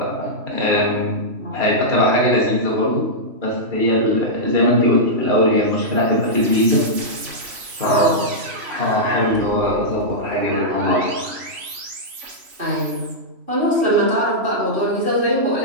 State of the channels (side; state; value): left; late; 3.0 ms